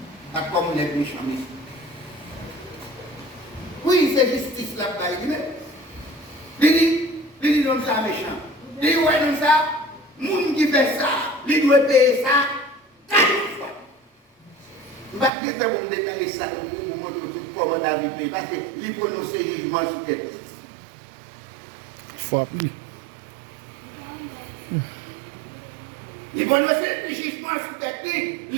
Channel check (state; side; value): drops out; left; at 15.3 s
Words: pas comme on est méchant ici. Oui, c'est justice là-bas. Il dit non ça méchant. Il dit ouais non ça. Moun qui fait ça, il doit payer ça 4 fois. Je ne vais pas vous détailler ça pour vous montrer comment David paye, parce qu'il prononce le jugement sur tête. Faut appeler. Il prononce le jugement sur tête,